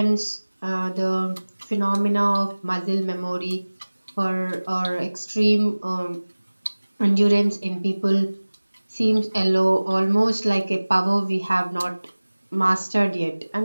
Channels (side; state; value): both; inverted; correlation -1.00